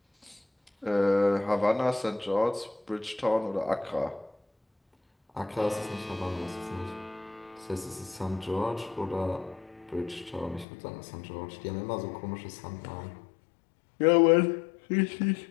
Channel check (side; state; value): right; drops out; at 10.7 s